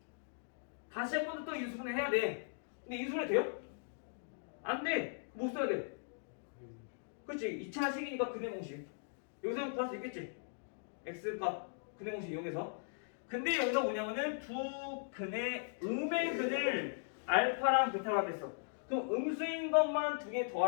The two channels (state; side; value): silent; right; digital silence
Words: 다시 한 번 더 인수분해 해야 돼. 근데 인수분해 돼요? 안 돼. 못 써야 돼. 그렇지? 2차식이니까 근해 공식. 여기서 구할 수 있겠지? x값 근해 공식 이용해서. 근데 여기서 뭐냐면은 두 근의 음의 근을 알파랑 베타로 하겠어. 그럼 음수인 것만 두 개